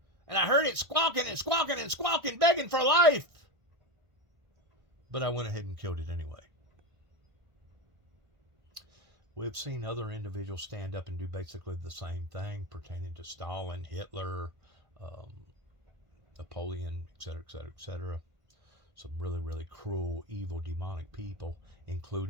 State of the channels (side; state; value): left; late; 1.5 ms